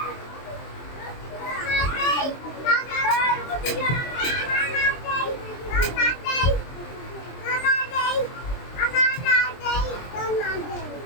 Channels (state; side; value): late; right; 23 ms